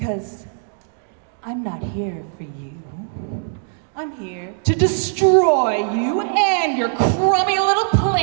I'm not here for you. I'm here to destroy you and your crummy little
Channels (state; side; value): silent; left; digital silence